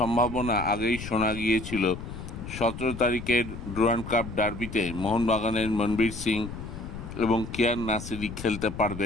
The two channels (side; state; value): left; noise; rumble, 10 dB below the sound